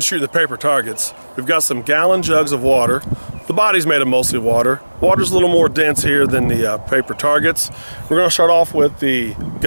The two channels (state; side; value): inverted; both; correlation -1.00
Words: the paper targets, we've got some gallon jugs of water. The body's made of mostly water. Water's a little more dense here than the paper targets. We're going to start off with the